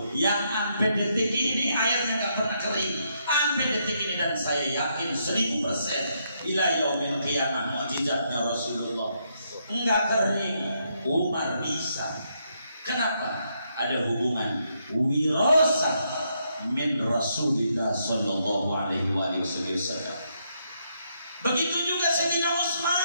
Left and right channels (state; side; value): inverted; both; correlation -0.77